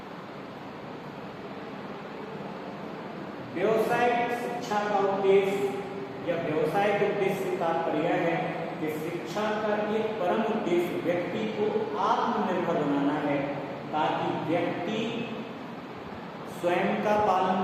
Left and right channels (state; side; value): identical; both; correlation 1.00